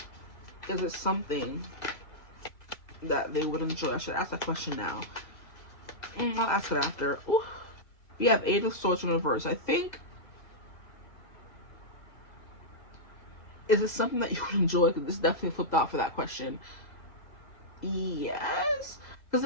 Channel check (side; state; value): right; late; 2.0 ms